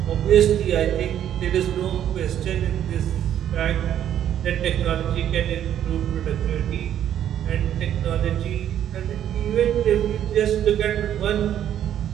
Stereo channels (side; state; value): left; quieter; 10.5 dB